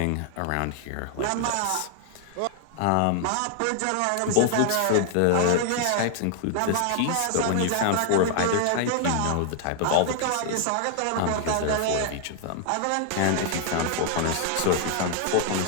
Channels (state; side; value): different; both; correlation 0.00